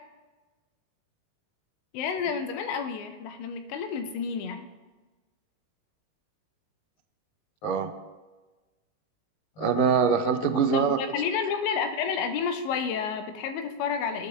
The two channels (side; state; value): right; late; 19 ms